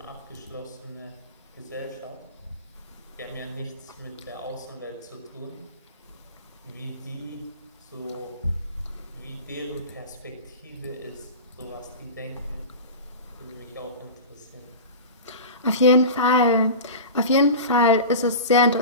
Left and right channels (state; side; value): inverted; both; correlation -0.31